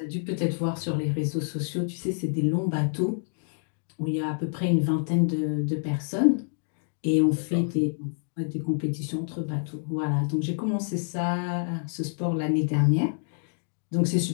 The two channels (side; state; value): right; silent; digital silence